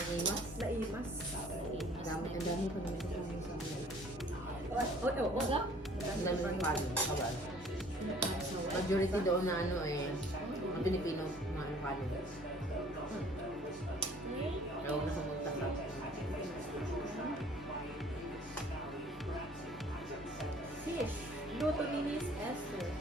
Naimas. Ang dami pa naman ito sa mga. Wala. Ang dami ng palo. Kawal. Majority doon na ang Pilipino, mga palo. Kaya huwag na sa magtasap. Fish. Luto ni Miss Esther.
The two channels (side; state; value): both; normal; correlation 0.54